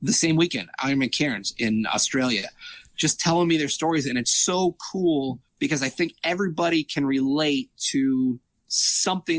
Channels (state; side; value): identical; both; correlation 1.00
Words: the same weekend, Ironman Cairns in Australia, just telling me their stories. And it's so cool because I think everybody can relate to